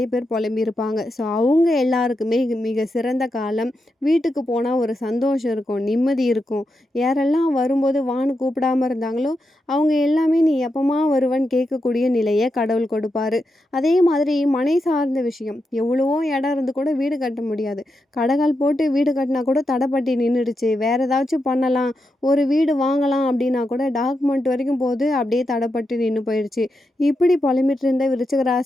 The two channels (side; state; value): both; normal; correlation 0.86